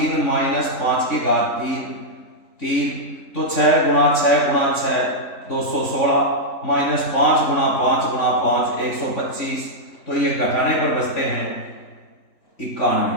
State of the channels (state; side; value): late; right; 3.5 ms